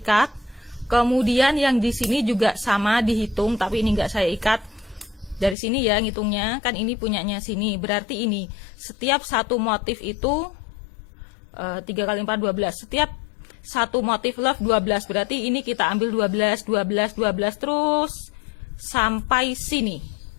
Kemudian yang di sini juga sama dihitung, tapi ini nggak saya ikat. Dari sini ya ngitungnya, kan ini punyanya sini. Berarti ini setiap satu motif itu 3 kali 4, 12. Setiap satu motif love 12. Berarti ini kita ambil 12, 12, 12 terus sampai sini.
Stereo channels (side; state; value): right; drops out; at 5.6 s